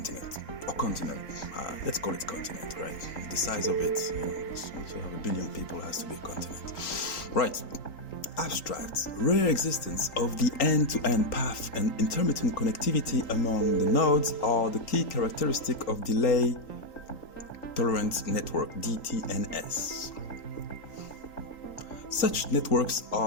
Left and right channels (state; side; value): late; right; 3.8 ms